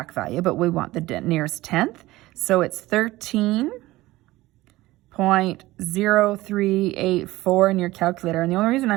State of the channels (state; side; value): quieter; left; 18.1 dB